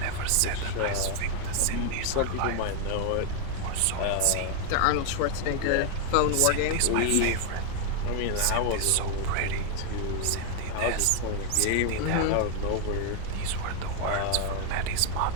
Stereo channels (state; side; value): different; both; correlation 0.01